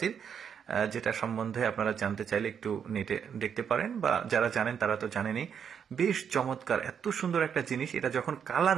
যেটা সম্বন্ধে আপনারা জানতে চাইলে একটু নেটে দেখতে পারেন, বা যারা জানেন তারা তো জানেনই। বেশ চমৎকার, এত সুন্দর একটা জিনিস। এটা যখন কালার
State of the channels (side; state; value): left; quieter; 7.6 dB